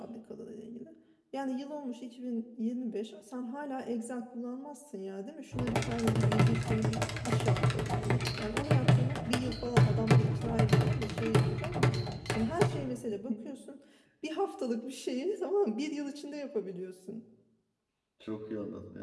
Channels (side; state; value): both; identical; correlation 1.00